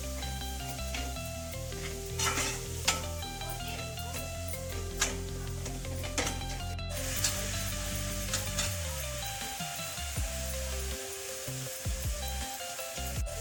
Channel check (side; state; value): both; identical; correlation 1.00